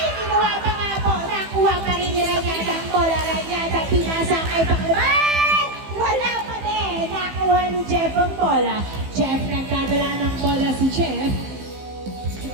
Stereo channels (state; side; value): late; left; 15 ms